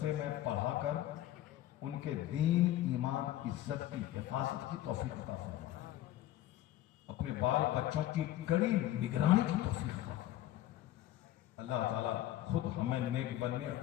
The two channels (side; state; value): right; quieter; 13.9 dB